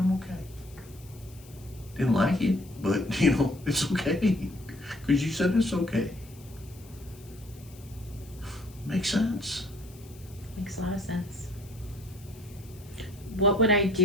okay. Didn't like it, but it's okay. Because you said it's okay. Makes sense. Makes a lot of sense. What would I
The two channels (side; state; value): left; noise; hiss, 23 dB below the sound